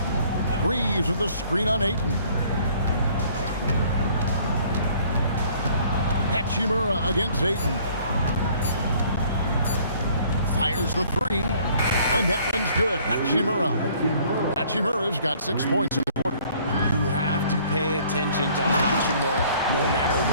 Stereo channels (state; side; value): inverted; both; correlation -0.58